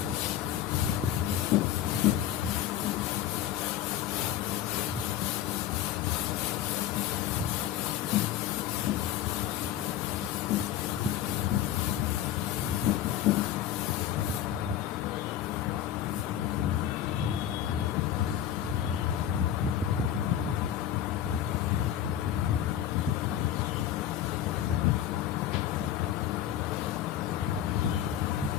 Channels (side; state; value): right; quieter; 11.1 dB